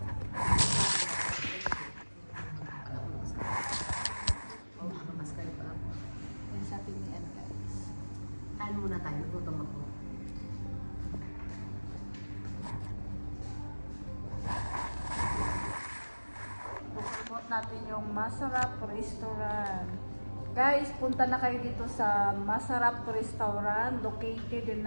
Kain muna tayo, gutom ako. Promote natin yung Masarap Restaurant. Guys, punta na kayo dito sa Masarap Restaurant, located in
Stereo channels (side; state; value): both; inverted; correlation -1.00